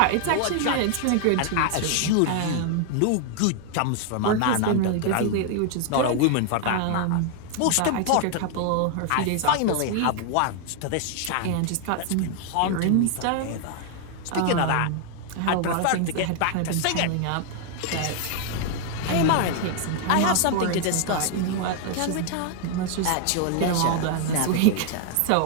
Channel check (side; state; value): both; different; correlation 0.00